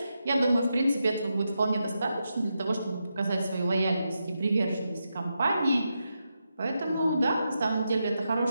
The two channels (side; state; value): both; inverted; correlation -0.86